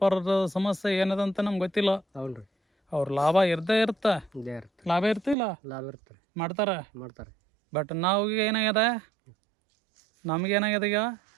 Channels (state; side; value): drops out; left; at 5.4 s